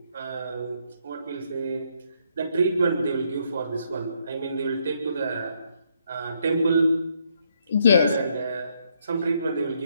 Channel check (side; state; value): both; inverted; correlation -0.73